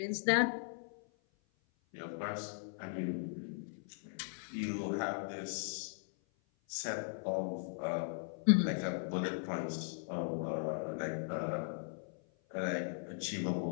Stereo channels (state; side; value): silent; right; 52 dB below the other